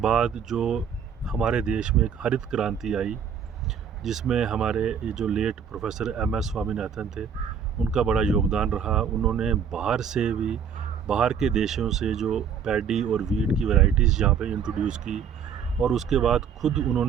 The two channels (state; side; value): quieter; left; 7.4 dB